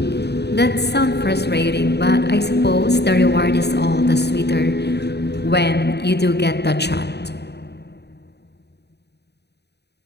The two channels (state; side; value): late; right; 0.49 ms